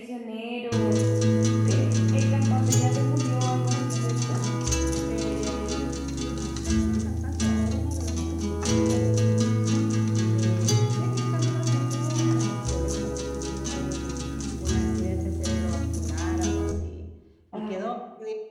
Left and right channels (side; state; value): both; identical; correlation 1.00